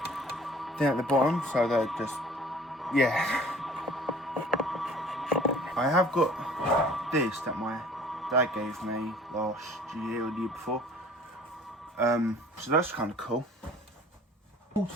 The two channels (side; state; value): both; normal; correlation 0.49